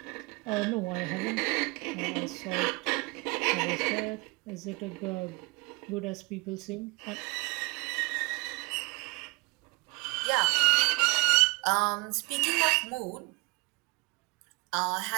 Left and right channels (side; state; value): left; quieter; 27.1 dB